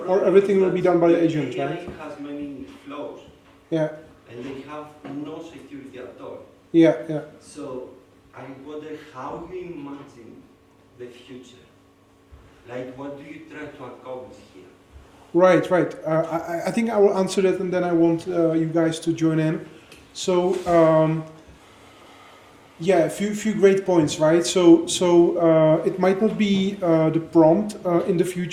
everything will be done by the agent, AI right? has many flaws. Yeah. And they have no security at all. Yeah. Yeah. So I wonder how you imagine the future. Like, what do you try to accomplish here? Right. Right. I think I will answer that, and then I want you guys to join in. So. Yeah, a few great points, right? So it might not be the prompt in the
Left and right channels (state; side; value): identical; both; correlation 1.00